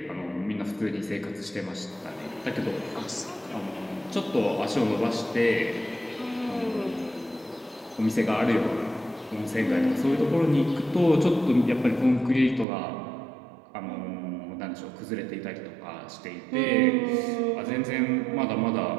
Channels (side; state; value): left; drops out; at 12.7 s